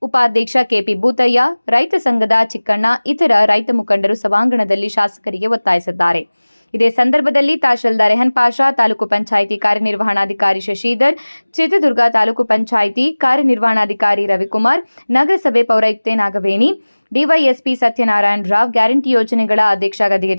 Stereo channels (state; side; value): inverted; both; correlation -1.00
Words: ಉಪಾಧ್ಯಕ್ಷ ಕೆಪಿ ಭೂತಯ್ಯ, ರೈತ ಸಂಘದ ಚಿಕ್ಕಣ್ಣ, ಇತರ ರೈತ ಮುಖಂಡರು ಸಭಾಂಗಣದಲ್ಲಿ ಶಾಸಕರಿಗೆ ಒತ್ತಾಯಿಸಿದ್ದಾರೆ. ಇದೇ ಸಂದರ್ಭದಲ್ಲಿ ತಹಶೀಲ್ದಾರ್ ರೆಹನ್ ಪಾಷಾ, ತಾಲೂಕು ಪಂಚಾಯಿತಿ ಕಾರ್ಯನಿರ್ವಹಣಾಧಿಕಾರಿ ಶಶಿಧರ್, ಚಿತ್ರದುರ್ಗ ತಾಲೂಕು ಪಂಚಾಯಿತಿ ಕಾರ್ಯನಿರ್ವಹಣಾಧಿಕಾರಿ ರವಿಕುಮಾರ್, ನಗರಸಭೆ ಪೌರಾಯುಕ್ತೆ ನಾಗವೇಣಿ, ಡಿವೈಎಸ್ಪಿ ಸತ್ಯನಾರಾಯಣ ರಾವ್, ಗ್ಯಾರಂಟಿ ಯೋಜನೆಗಳ ಅಧ್ಯಕ್ಷ ಗದಿಗೆ